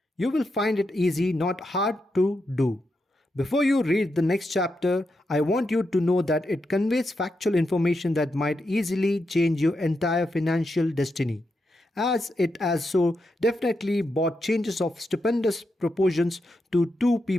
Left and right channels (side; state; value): both; normal; correlation 0.85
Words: You will find it easy, not hard to do. Before you read the next chapter, I want you to know that it conveys factual information that might easily change your entire financial destiny, as it has so definitely brought changes of stupendous proportions to two